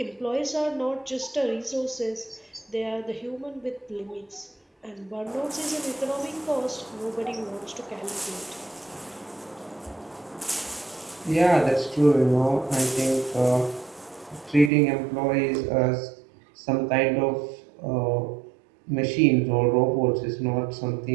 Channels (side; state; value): left; drops out; at 14.7 s